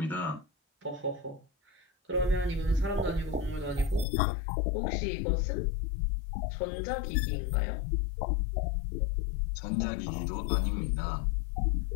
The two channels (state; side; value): drops out; right; at 4.0 s